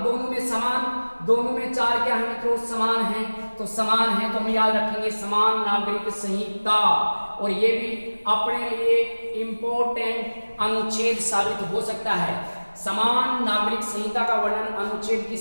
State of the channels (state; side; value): inverted; both; correlation -1.00